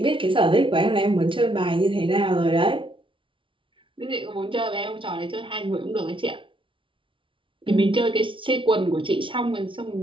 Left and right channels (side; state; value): left; late; 0.25 ms